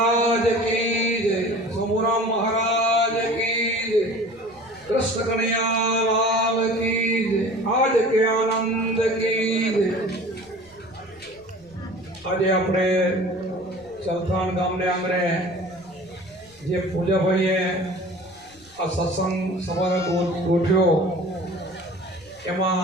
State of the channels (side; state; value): right; noise; rumble, 29 dB below the sound